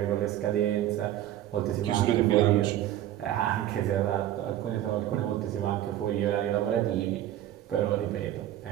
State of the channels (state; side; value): quieter; left; 12.7 dB